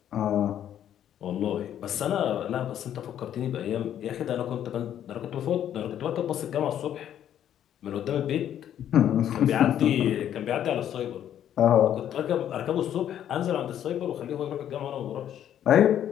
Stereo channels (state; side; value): quieter; right; 10.4 dB